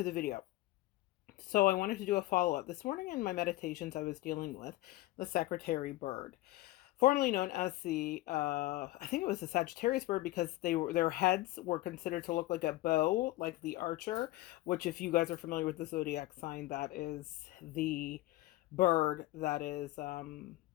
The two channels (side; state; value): right; quieter; 17.5 dB